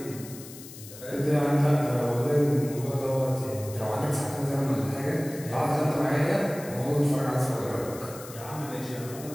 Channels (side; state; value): left; noise; hiss, 16 dB below the sound